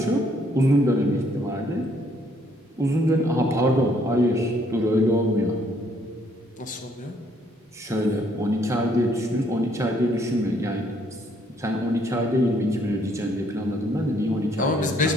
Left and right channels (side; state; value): both; normal; correlation 0.67